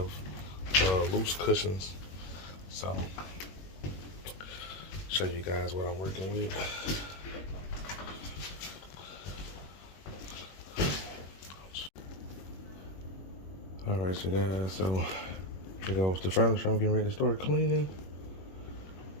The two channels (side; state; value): right; late; 21 ms